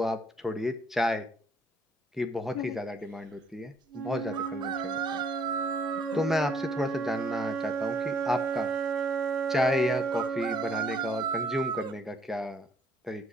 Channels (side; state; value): both; normal; correlation 0.65